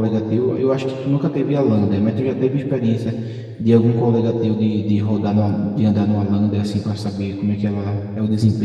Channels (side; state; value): both; identical; correlation 1.00